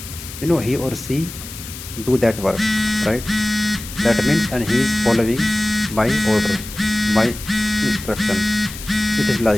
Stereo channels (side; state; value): left; noise; hiss, 12 dB below the sound